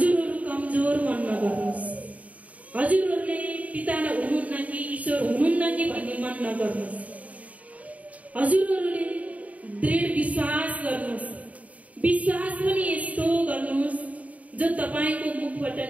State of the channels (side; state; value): left; late; 0.070 ms